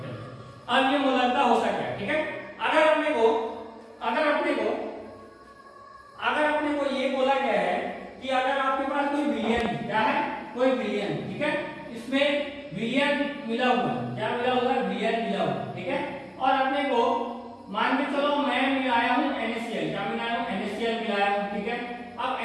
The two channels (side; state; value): both; identical; correlation 1.00